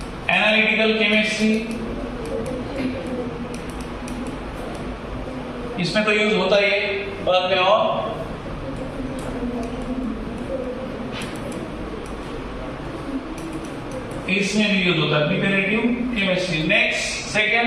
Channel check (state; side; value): identical; both; correlation 1.00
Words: एनालिटिकल केमिस्ट्री, इसमें तो यूज होता ही है बाद में, और इसमें भी यूज होता है प्रिपरेटिव केमिस्ट्री। नेक्स्ट